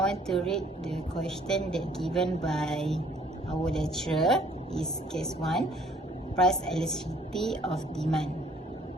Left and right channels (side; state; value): both; normal; correlation 0.60